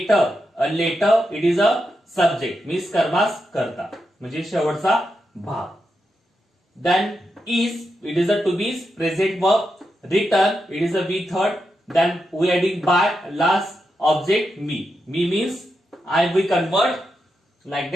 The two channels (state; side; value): normal; both; correlation 0.86